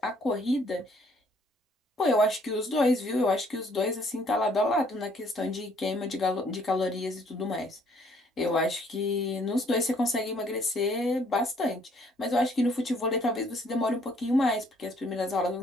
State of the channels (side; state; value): both; normal; correlation 0.63